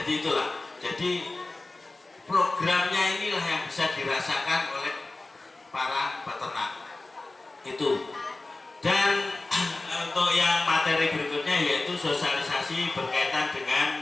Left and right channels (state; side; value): quieter; right; 3.1 dB